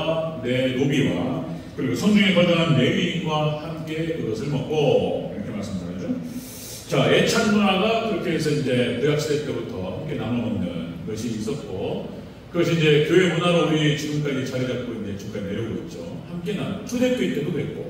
내 노비와 그리고 성중에 거주하는 레위인과 함께 그것을 먹고, 이렇게 말씀드리죠. 자, 애찬 문화가 그렇게 해서 이제 구약시대 때부터 함께 나눠 먹는 것이 있었고, 그것이 이제 교회 문화로 우리 지금까지 자리 잡고 이제 지금까지 내려오고 있죠. 함께 나누. 초대교회 때도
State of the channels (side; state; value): both; identical; correlation 1.00